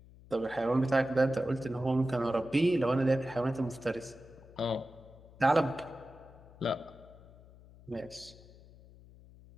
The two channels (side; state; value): left; noise; hum, 22 dB below the sound